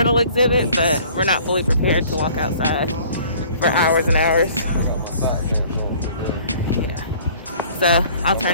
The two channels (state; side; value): inverted; both; correlation -0.52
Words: exhibit, but we're not fully prepared to walk outside for hours and hours. Yeah. So I'll